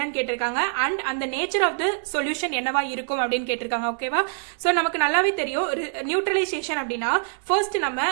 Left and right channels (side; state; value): left; silent; digital silence